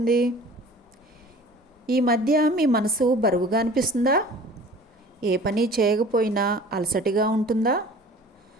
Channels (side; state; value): both; normal; correlation 0.45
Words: ఈ మధ్య మీ మనసు బరువుగా అనిపిస్తుందా? ఏ పని చేయకపోయినా అలసటిగా ఉంటుందా?